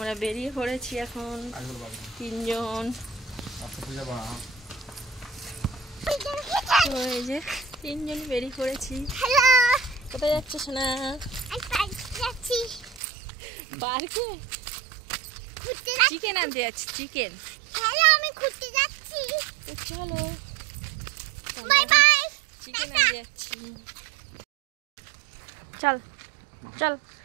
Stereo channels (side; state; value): left; drops out; at 13.0 s